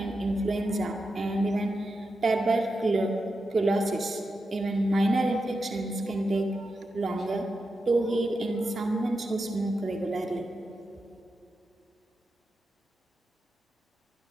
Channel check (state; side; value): normal; both; correlation 0.88